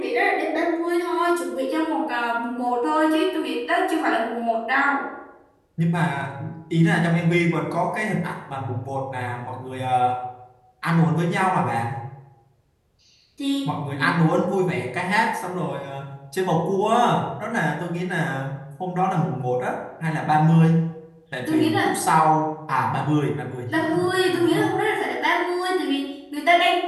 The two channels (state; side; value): identical; both; correlation 1.00